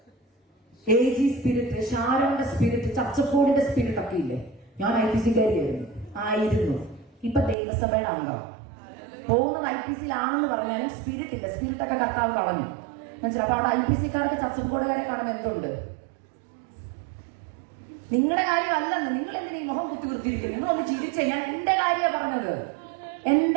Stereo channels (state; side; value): drops out; left; at 7.6 s